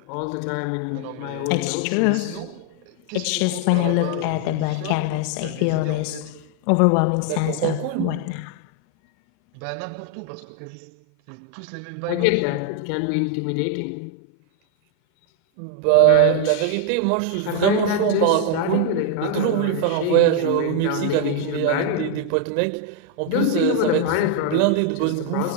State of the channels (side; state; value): both; different; correlation 0.00